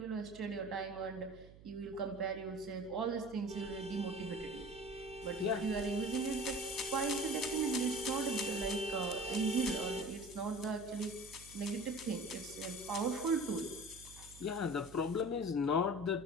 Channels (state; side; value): noise; right; hum, 19 dB below the sound